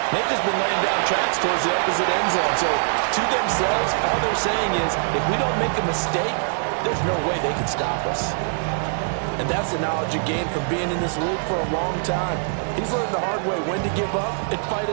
They've just been laying down tracks towards the opposite end zone. So, to themselves, all they're saying is, if we don't make a mistake, there's no way they can stop us. And that's the knowledge you gain from being in this league for a long time. He's learned the hard way when to give up and fight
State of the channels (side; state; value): left; silent; digital silence